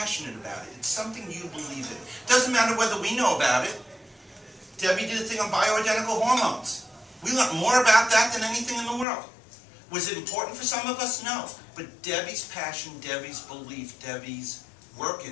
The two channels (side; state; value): right; drops out; at 9.1 s